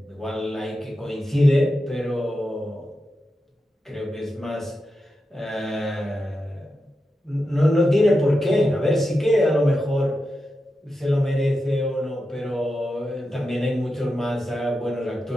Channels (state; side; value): normal; both; correlation 0.89